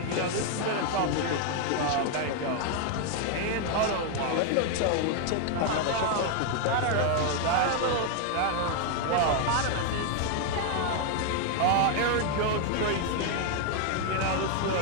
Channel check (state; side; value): different; both; correlation 0.01